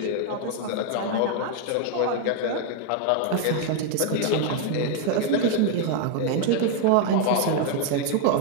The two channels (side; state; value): both; different; correlation 0.00